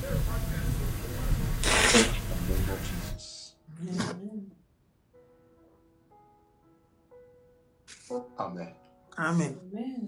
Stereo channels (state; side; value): identical; both; correlation 1.00